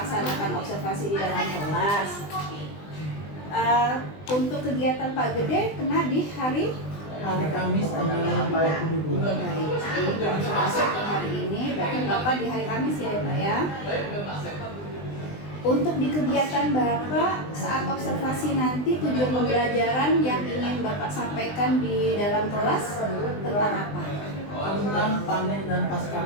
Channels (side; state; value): right; late; 20 ms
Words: observasi di dalam kelas. Untuk kegiatan Pak Gede kena di hari Kamis tanggal 22. Baik, jadi langsung masuk ke hari ini. Berarti Bapak di hari Kamis ya Pak ya. Untuk di kegiatan Bapak saat observasi nanti, tujuan pembelajaran yang ingin Bapak sampaikan di dalam kelas tentang apa? Tentang panen dan pasca